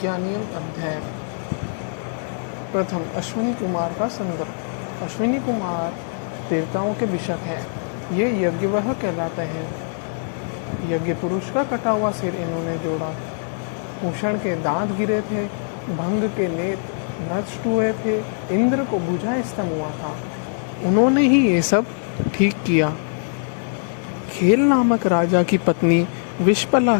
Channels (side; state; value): right; silent; digital silence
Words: अध्याय। प्रथम अश्विनी कुमार का संदर्भ। अश्विनी कुमार देवताओं के भिषक हैं। ये यज्ञवह कहलाते हैं। यज्ञ पुरुष का कटा हुआ सिर इन्होंने जोड़ा था। भूषण के दांत गिरे थे, भंग के नेत्र नष्ट हुए थे, इंद्र को बुझा स्तंभ हुआ था। उन्होंने ही ये सब ठीक किया। खेल नामक राजा की पत्नी विश्पला